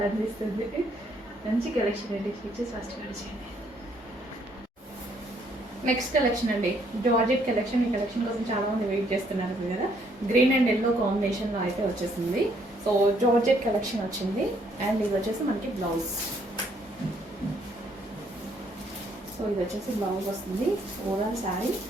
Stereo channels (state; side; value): normal; both; correlation 0.68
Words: మంచి కలెక్షన్ అండి, ఫీచర్స్ ఫస్ట్ చేయండి. నెక్స్ట్ కలెక్షన్ అండి, జార్జెట్ కలెక్షన్. ఈ కలెక్షన్ కోసం చాలా మంది వెయిట్ చేస్తున్నారు కదా, గ్రీన్ అండ్ ఎల్లో కాంబినేషన్లో అయితే వచ్చేసింది. సో జార్జెట్ కలెక్షన్ వచ్చింది, అండ్ ఇది వచ్చేసి మనకి బ్లౌజ్. సో ఇది వచ్చేసి బ్లౌజ్ వస్తుంది. ఓవరాల్ శారీ